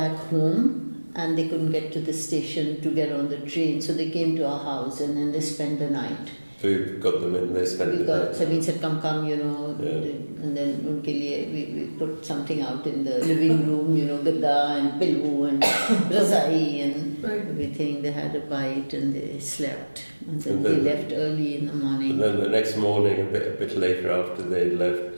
home and they couldn't get to the station to get on the train. So they came to our house and then they spent the night. So we got them in, they spent the night. Sabeen said, come, and then unke liye we put something out in the living room, gadda and pillow and razai and everything. They had a bite and they slept. And then they left early in the morning. And then the next morning, a bit later after they'd left,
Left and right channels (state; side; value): inverted; both; correlation -1.00